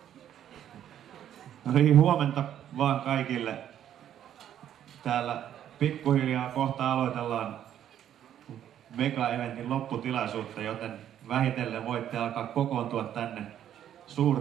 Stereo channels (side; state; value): left; quieter; 10.6 dB